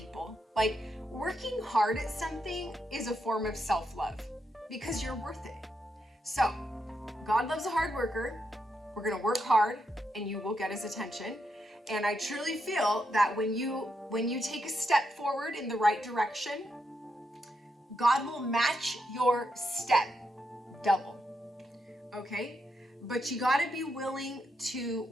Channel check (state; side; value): normal; both; correlation 0.82